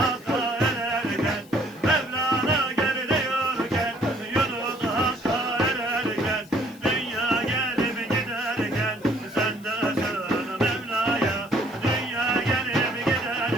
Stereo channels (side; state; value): left; noise; hiss, 25 dB below the sound